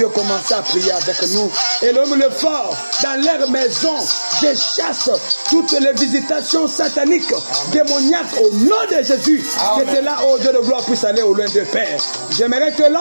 commencer à prier avec nous. Et l'homme le fort, dans leur maison, je chasse toutes les visitations sataniques, démoniaques au nom de Jésus. Que cela, oh Dieu de gloire, puisse aller au loin de Père. J'aimerais que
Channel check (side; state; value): both; inverted; correlation -1.00